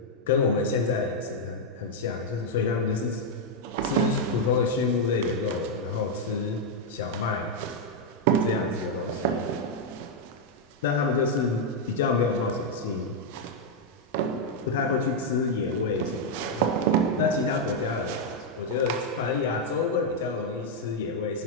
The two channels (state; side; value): normal; both; correlation -0.01